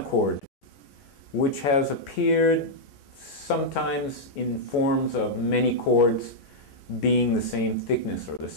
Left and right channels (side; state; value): right; late; 14 ms